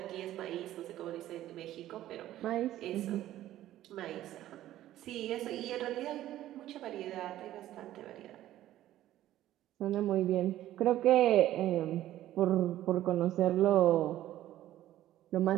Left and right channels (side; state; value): left; quieter; 13.6 dB